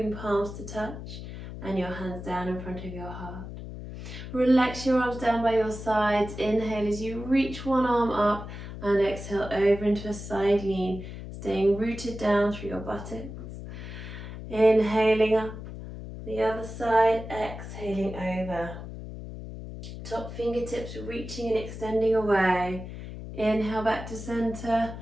palms to touch and your hands down in front of your heart. Relax your arms down by your sides. Inhale as you reach one arm up and exhale over into a side lean, staying rooted down through your buttocks. Inhaling up the other side, exhaling over. Top fingertips reaching and extending away. Inhale back to center.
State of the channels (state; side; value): noise; left; hum, 10 dB below the sound